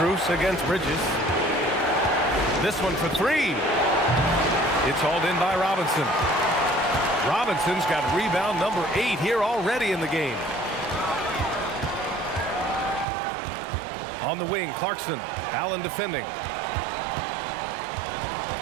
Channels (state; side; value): drops out; left; at 13.1 s